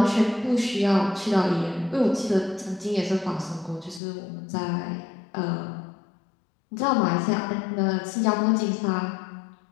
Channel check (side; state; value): right; drops out; at 4.0 s